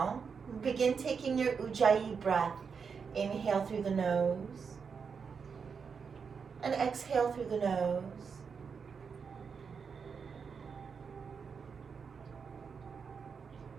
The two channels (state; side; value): quieter; left; 5.9 dB